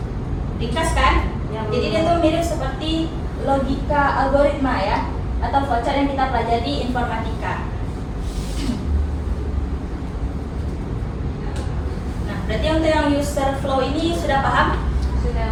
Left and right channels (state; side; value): identical; both; correlation 1.00